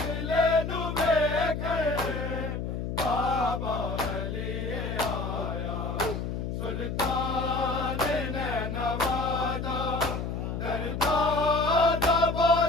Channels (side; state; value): left; noise; hum, 4 dB below the sound